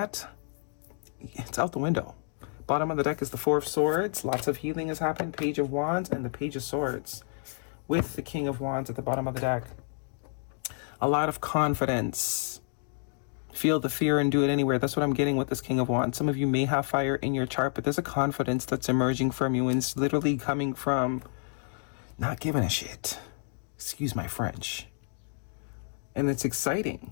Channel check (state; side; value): silent; right; digital silence